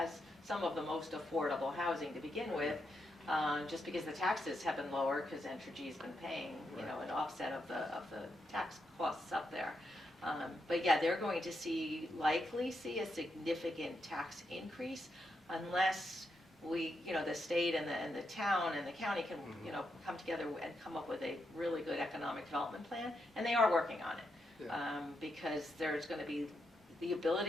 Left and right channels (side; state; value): both; normal; correlation 0.82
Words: some of the most affordable housing to begin with, just because the taxes have been lower, because Entergy's been paying, an offset of the tax costs up there. But yeah, they're going to likely see a significant tax increase unless we, the state and the town and the county can, come together and come up with a really good economic development plan, and they are working on it. Because there's going to be the